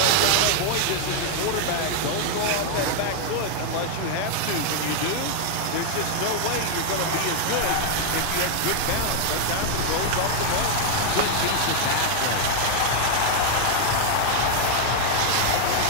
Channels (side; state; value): both; different; correlation 0.00